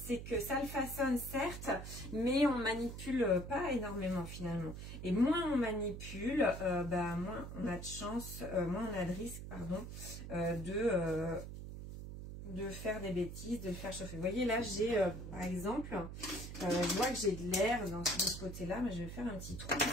que ça le façonne certes, mais on manipule pas énormément finalement. Et moins on manipule, bah, moins on a de chance, moins on a de risque, pardon, de faire des bêtises, de le faire chauffer. Vous voyez là j'ai par exemple, je vois que j'ai de l'air de ce côté-là, mais je vais faire un petit trou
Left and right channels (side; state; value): right; noise; hum, 9 dB below the sound